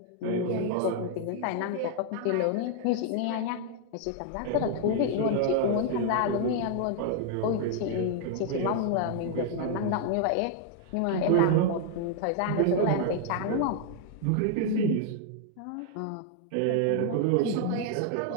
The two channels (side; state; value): both; different; correlation 0.00